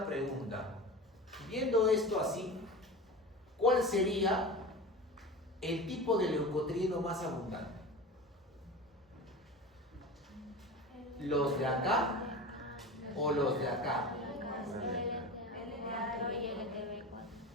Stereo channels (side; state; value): both; normal; correlation 0.31